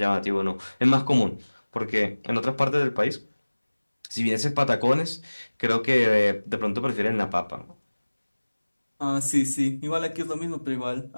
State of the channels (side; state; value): both; inverted; correlation -1.00